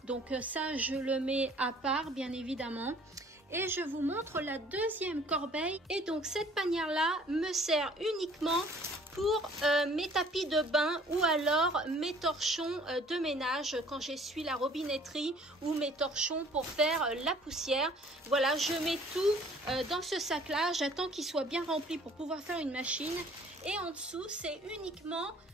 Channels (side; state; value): both; normal; correlation 0.55